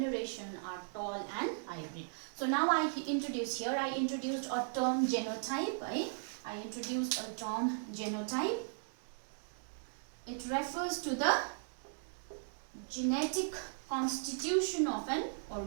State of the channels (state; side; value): silent; left; digital silence